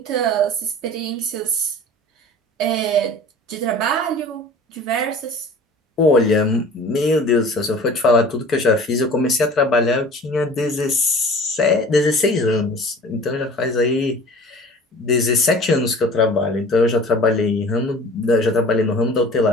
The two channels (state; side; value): normal; both; correlation 0.43